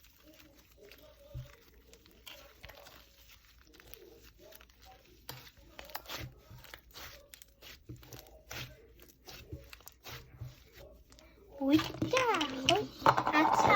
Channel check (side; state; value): both; identical; correlation 1.00